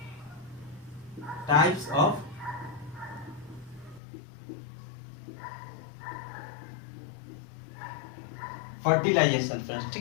Types of fertilization friends.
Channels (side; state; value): right; drops out; at 4.0 s